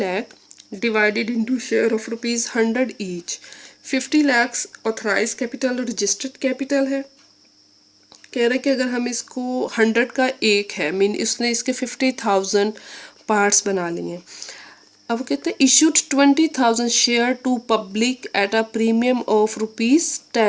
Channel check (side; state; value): both; identical; correlation 1.00